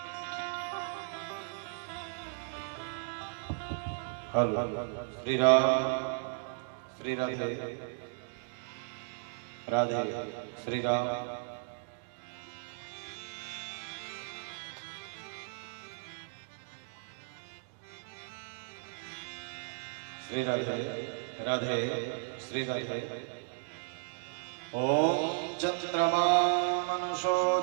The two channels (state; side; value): silent; left; digital silence